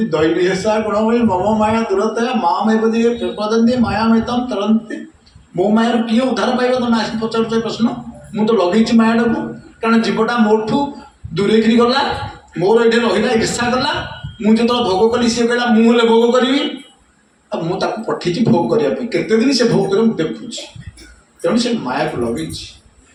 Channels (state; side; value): identical; both; correlation 1.00